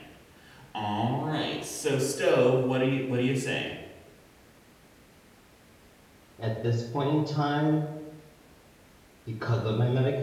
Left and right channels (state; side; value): identical; both; correlation 1.00